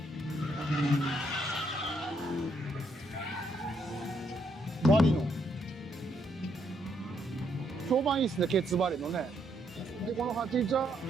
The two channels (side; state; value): both; normal; correlation 0.74